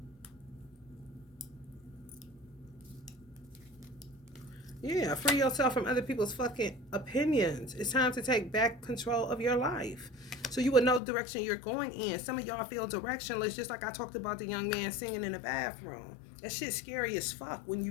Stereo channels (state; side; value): drops out; right; at 11.0 s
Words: Yeah, free yourself from other people's fucking opinions. It's time to take back control of your life. So you would know the direction you're going in. Some of y'all feel directionless, just like I talked about the young man singing in the bathroom. That shit's scary as fuck when